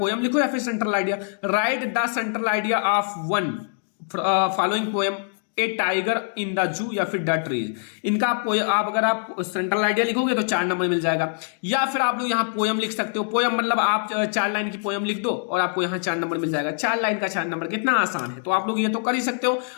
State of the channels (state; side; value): silent; right; digital silence